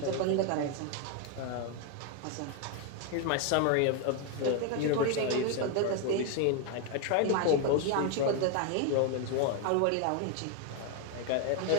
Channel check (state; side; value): different; both; correlation 0.01